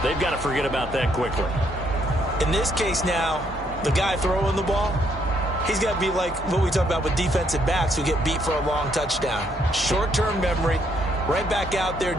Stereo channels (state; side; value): normal; both; correlation 0.71